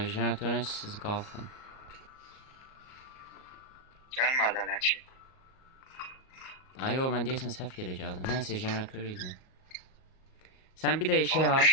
Jeneratörün siz qalxın. Gelmedi hala ki. Ay o mən deyəsən səhv yerə gəldim. Nəysə jeneratör idi. Sən bir də şey at.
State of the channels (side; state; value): right; late; 38 ms